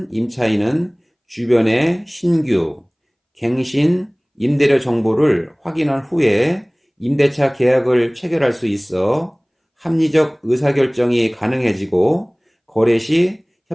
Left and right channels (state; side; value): identical; both; correlation 1.00